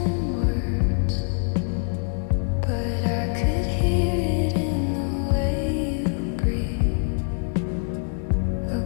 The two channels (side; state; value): right; silent; 62 dB below the other